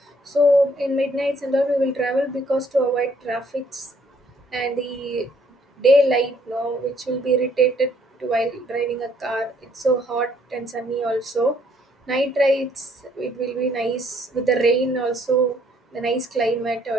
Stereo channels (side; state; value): both; normal; correlation 0.65